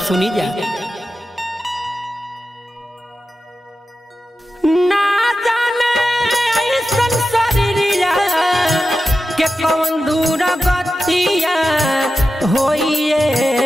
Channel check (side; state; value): both; normal; correlation 0.92